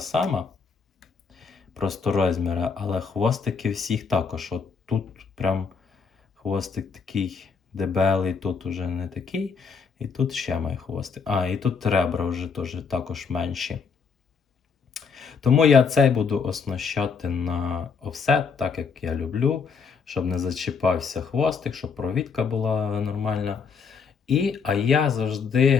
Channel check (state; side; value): quieter; right; 5.6 dB